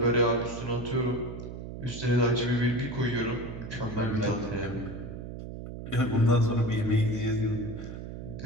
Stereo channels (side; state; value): right; noise; hum, 9 dB below the sound